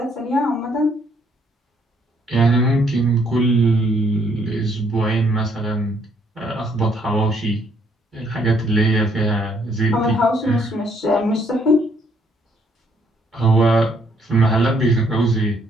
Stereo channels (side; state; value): both; normal; correlation 0.68